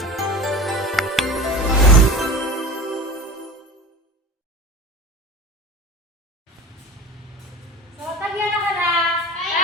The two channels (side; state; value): both; normal; correlation 0.33